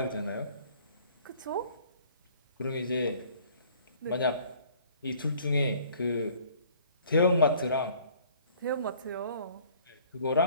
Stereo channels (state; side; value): inverted; both; correlation -0.54